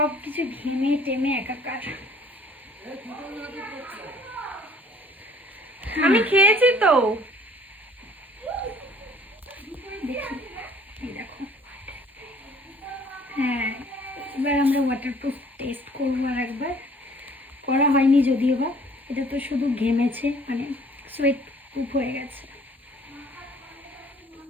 কিছু ঘেমে টেমে একাকার। আমি খেয়েছি তো। দেখি দেখো। হ্যাঁ, এবার আমরা ওয়াটারপ্রুফ টেস্ট করবো আর একবার। করা হয়নি যদিও বা, এটা তো শুধু ঘেমেছে, মানে সোয়েট প্রুফ হয়ে গেছে।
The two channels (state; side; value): normal; both; correlation 0.55